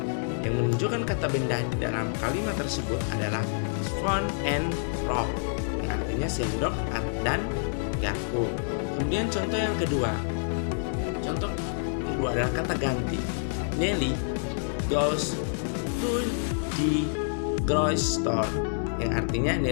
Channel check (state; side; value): silent; right; 60 dB below the other